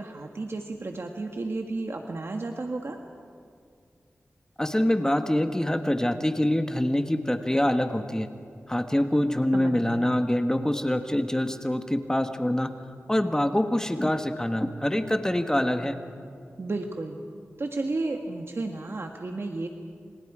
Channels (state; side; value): normal; both; correlation 0.98